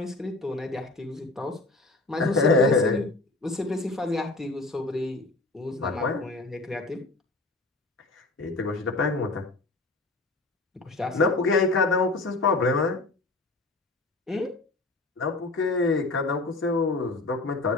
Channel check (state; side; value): quieter; right; 3.1 dB